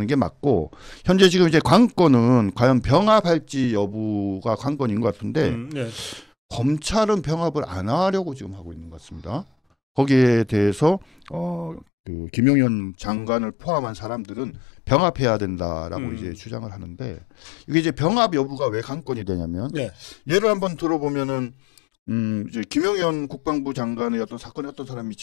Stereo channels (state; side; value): drops out; right; at 11.9 s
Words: 게 맞고 현재 지금 이제 관건은 과연 병합할지 여부가 관건인 것 같은데 네. 검찰은 병합을 안 하려고 지금 하고 있는 것 같습니다. 거기에 대해서 그 김용현 장관을 포함한 사람들은 병합해야 된다라고 이제 주장을 하는데 이게 이제 병합 여부가 왜 관건이 되냐면 네. 예를 한번 들어보면은 이제 김용현 국방부 장관의 어떤 사건에 어떤 사람이